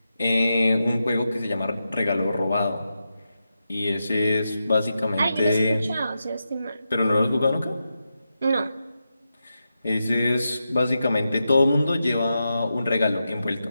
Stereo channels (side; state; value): both; inverted; correlation -0.88